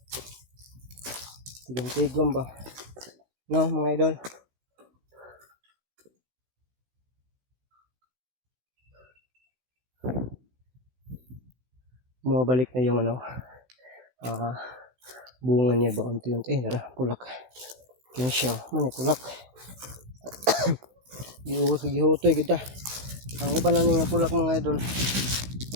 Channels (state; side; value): late; left; 16 ms